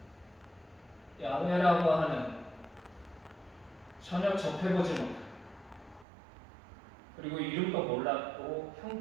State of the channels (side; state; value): left; drops out; at 6.1 s